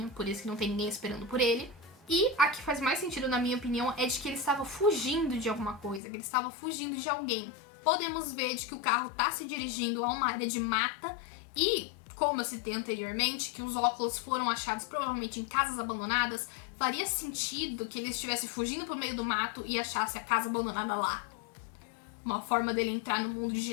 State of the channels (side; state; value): right; drops out; at 6.0 s